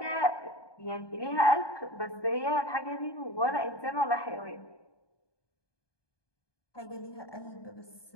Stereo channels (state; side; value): late; right; 1.2 ms